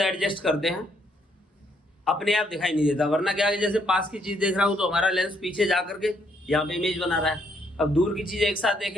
करते हैं, अपने आप दिखाई नहीं देता। वरना क्या है, जैसे पास की चीज देख रहा हूं तो हमारा लेंस पीछे जा करके यहाँ पे इमेज बना रहा है। अब दूर की चीज एक साथ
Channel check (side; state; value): both; normal; correlation 0.72